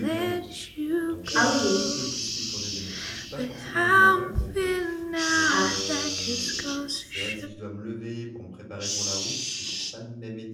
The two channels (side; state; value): both; identical; correlation 1.00